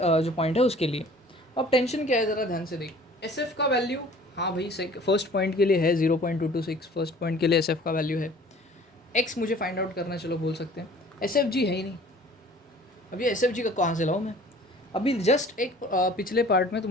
पॉइंट है उसके लिए। अब टेंशन क्या है ज़रा ध्यान से देख, SF का वैल्यू, हाँ भाई फर्स्ट पॉइंट के लिए है 0.226, फर्स्ट पॉइंट के लिए SF का वैल्यू है। X मुझे फाइंड आउट करना, चलो बोल सकते हैं। SFG है ही नहीं, अब ये SFG का कहाँ से लाऊँ मैं। अभी जस्ट एक पिछले पार्ट में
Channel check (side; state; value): both; normal; correlation 0.50